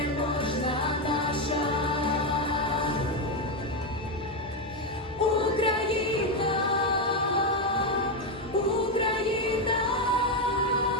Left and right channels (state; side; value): normal; both; correlation 0.08